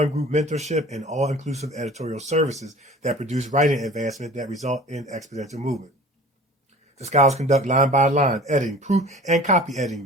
group mentorship and all-inclusive editorial services that produce writing advancement that result in exponential movement. The scholars conduct line-by-line editing, proof and copy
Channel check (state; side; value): normal; both; correlation 0.43